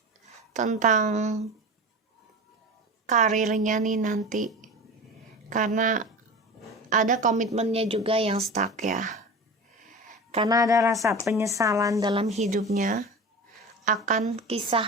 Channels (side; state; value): both; normal; correlation 0.31